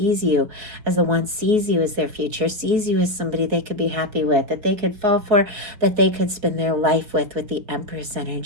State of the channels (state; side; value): late; left; 4.7 ms